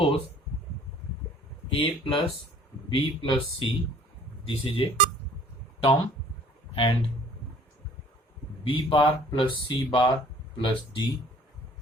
A plus B plus C, this is a term, and B bar plus C bar plus D,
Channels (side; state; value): both; normal; correlation 0.53